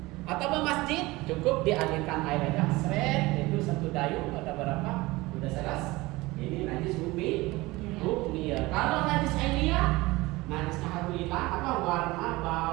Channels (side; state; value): left; quieter; 20.9 dB